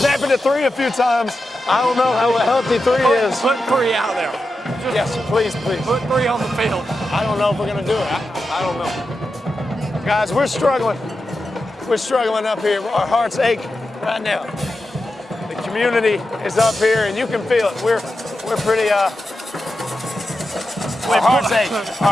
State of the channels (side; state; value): both; normal; correlation 0.90